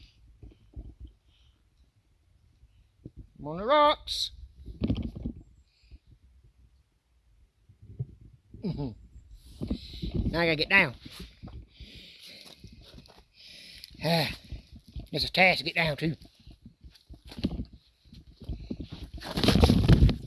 I'm on the rocks. Now I gotta get down. It's a task to get down too.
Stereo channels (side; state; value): both; identical; correlation 1.00